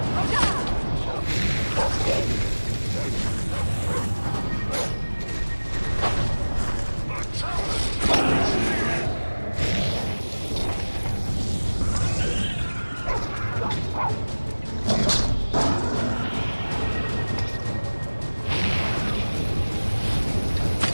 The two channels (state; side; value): inverted; both; correlation -1.00